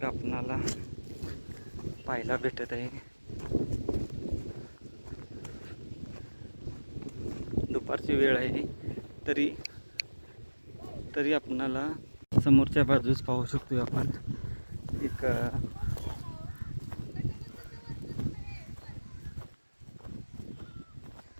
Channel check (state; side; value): inverted; both; correlation -1.00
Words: आपणाला पाहायला भेटत आहे. दुपारची वेळ आहे तरी आपणाला समोरच्या बाजूस पाहू शकतो आपण एक